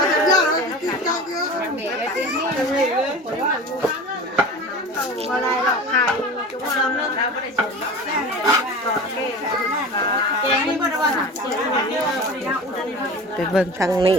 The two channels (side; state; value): both; normal; correlation 0.35